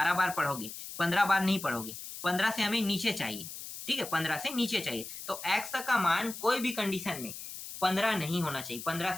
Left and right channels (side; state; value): left; noise; hiss, 10 dB below the sound